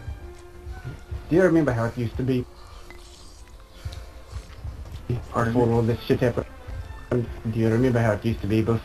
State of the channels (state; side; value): identical; both; correlation 1.00